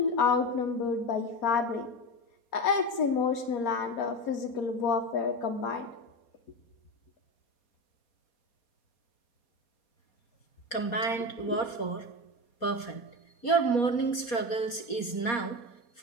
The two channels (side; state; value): right; late; 4.2 ms